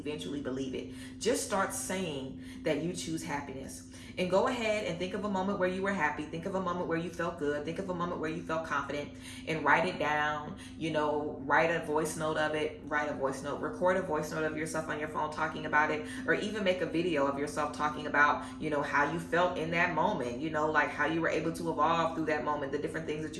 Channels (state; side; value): identical; both; correlation 1.00